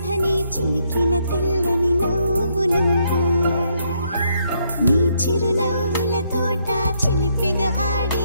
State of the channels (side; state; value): both; inverted; correlation -0.74